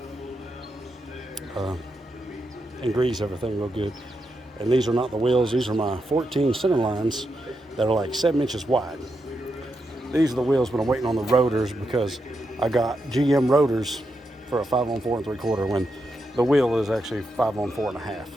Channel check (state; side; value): normal; both; correlation 0.84